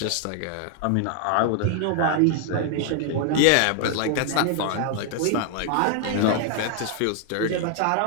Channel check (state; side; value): different; both; correlation 0.00